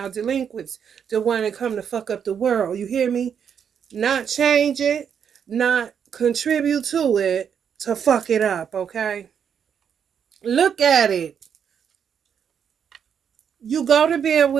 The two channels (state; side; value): quieter; left; 7.7 dB